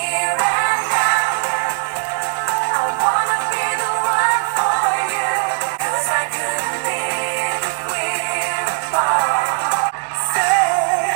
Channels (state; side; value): silent; left; digital silence